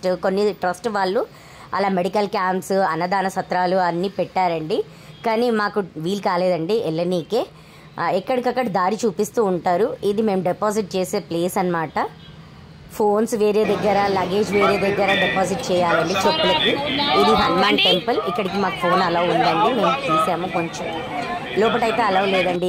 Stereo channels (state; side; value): identical; both; correlation 1.00